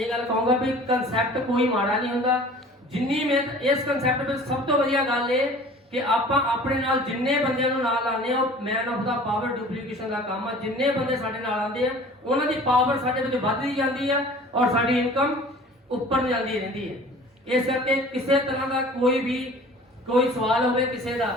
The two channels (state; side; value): normal; both; correlation 0.45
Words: ਗੱਲ ਕਹੂੰਗਾ ਵੀ ਕਨਸੈਪਟ ਕੋਈ ਮਾੜਾ ਨਹੀਂ ਹੁੰਦਾ। ਜਿੰਨੀ ਮਿਹਨਤ ਇਸ ਕਨਸੈਪਟ ਵਿੱਚ ਸਭ ਤੋਂ ਵਧੀਆ ਗੱਲ ਇਹ ਕਿ ਆਪਾਂ ਆਪਣੇ ਨਾਲ ਜਿੰਨੇ ਬੰਦਿਆਂ ਨੂੰ ਨਾਲ ਆਉਂਦੇ ਆ, ਉਹ man of the power duplication ਦਾ ਕੰਮ ਆ। ਜਿੰਨੇ ਬੰਦੇ ਸਾਡੇ ਨਾਲ ਆਉਂਦੇ ਆ ਉਹਨਾਂ ਦੀ ਪਾਵਰ ਸਾਡੇ ਵਿੱਚ ਵੱਧਦੀ ਜਾਂਦੀ ਆ ਔਰ ਸਾਡੀ ਇਨਕਮ ਉੱਪਰ ਨੂੰ ਜਾਂਦੀ ਰਹਿੰਦੀ ਹੈ। ਇਸ ਕਰਕੇ ਕਿਸੇ ਤਰ੍ਹਾਂ ਦਾ ਕੋਈ ਸਵਾਲ ਹੋਵੇ ਕਿਸੇ ਦਾ,